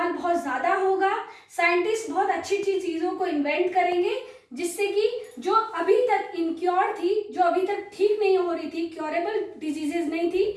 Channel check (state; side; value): identical; both; correlation 1.00